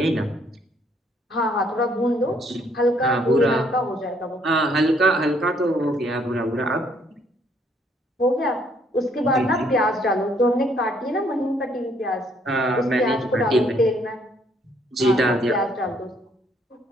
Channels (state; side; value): normal; both; correlation 0.67